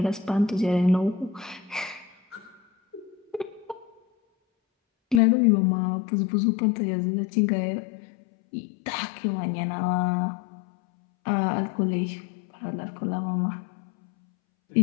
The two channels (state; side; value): drops out; right; at 5.2 s